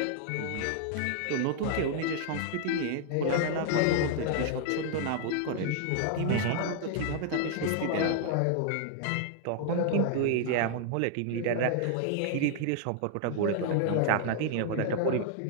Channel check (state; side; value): different; both; correlation 0.00